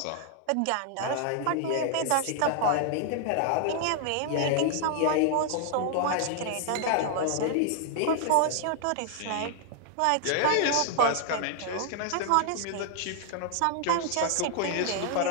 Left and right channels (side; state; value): both; different; correlation 0.00